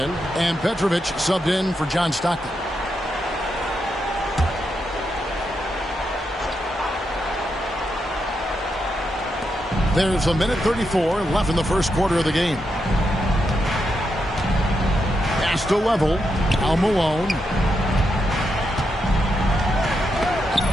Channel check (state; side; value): normal; both; correlation 0.83